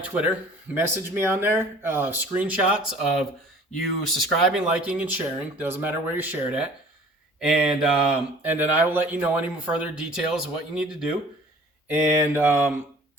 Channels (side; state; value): both; normal; correlation 0.49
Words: Message me on there. Screenshots of you subscribing, liking, and sharing. Doesn't matter where you share it at. And then I will let you know any further details of what you need to do. And